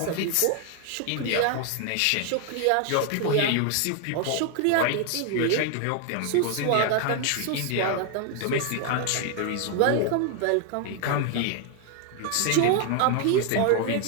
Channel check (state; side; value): different; both; correlation 0.00